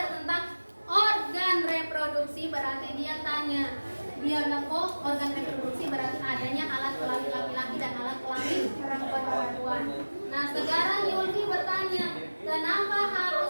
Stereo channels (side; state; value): both; inverted; correlation -1.00